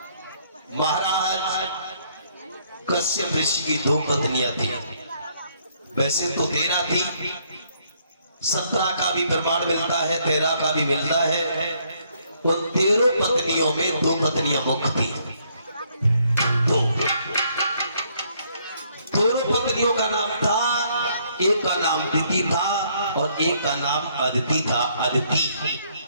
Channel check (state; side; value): inverted; both; correlation -0.68